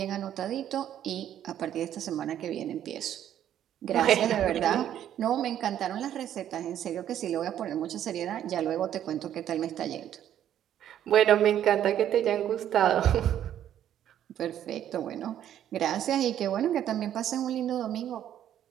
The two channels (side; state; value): left; quieter; 10.8 dB